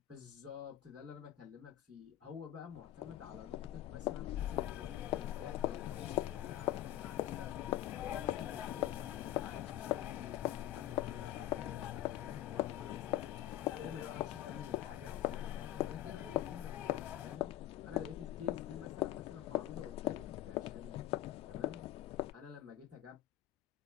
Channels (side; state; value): right; quieter; 13.4 dB